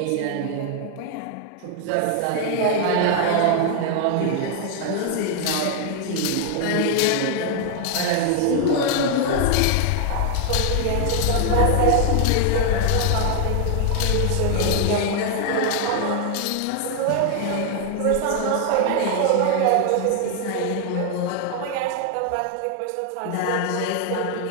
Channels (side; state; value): both; different; correlation 0.00